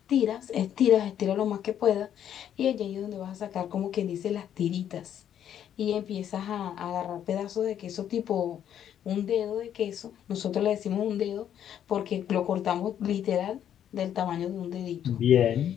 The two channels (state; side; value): quieter; right; 9.9 dB